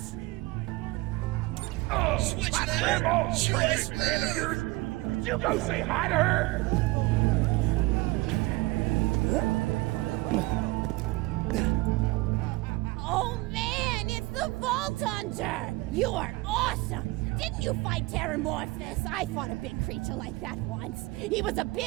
Oh, Switch my there! grandma, Switch crazy there! man of yours! Could you go say hi to her? Oh man, it's the Vault Hunter! You are awesome! Didn't you fight Terramorphous? I fought a big creature like that once. He was a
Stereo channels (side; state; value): left; quieter; 21.9 dB